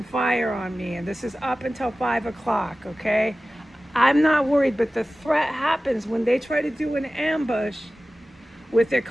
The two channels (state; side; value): normal; both; correlation 0.96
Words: fire on me. And this is up until 5 o'clock, okay? I'm not worried, but the threat happens when they try to do an ambush with their